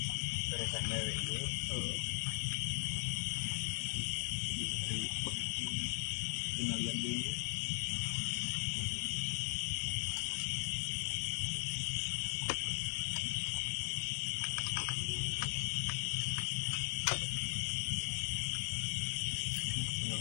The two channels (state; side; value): silent; right; digital silence